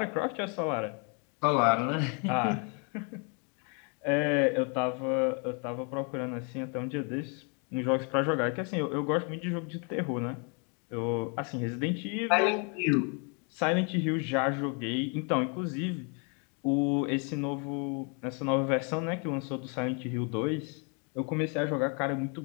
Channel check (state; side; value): quieter; right; 36.8 dB